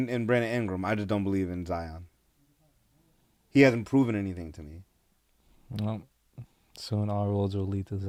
Brandon Ingram. I just don't believe in Zion. He hasn't proven anything to me. Well, soon all roads will lead to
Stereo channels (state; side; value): identical; both; correlation 1.00